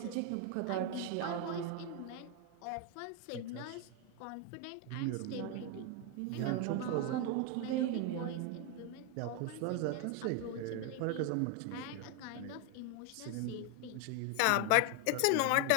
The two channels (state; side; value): different; both; correlation 0.01